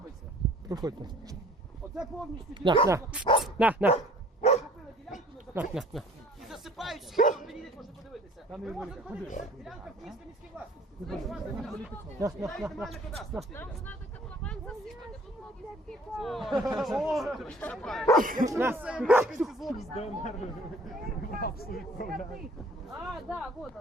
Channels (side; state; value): both; normal; correlation 0.52